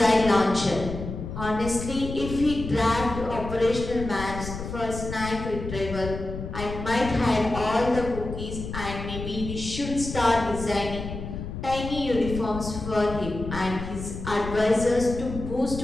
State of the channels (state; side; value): noise; left; rumble, 8 dB below the sound